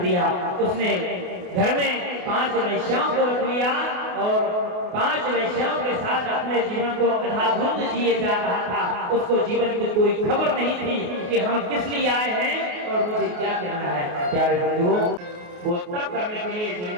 उसने घर में 5 वैश्याओं को रख लिया और 5 वैश्याओं के साथ अपने जीवन को अंधाधुंध जिए जा रहा था। उसको जीवन की कोई खबर नहीं थी कि हम किस लिए आए हैं और मुझे क्या करना है। प्यारे बंधुओं, वो तब करने के लिए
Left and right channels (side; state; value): left; late; 28 ms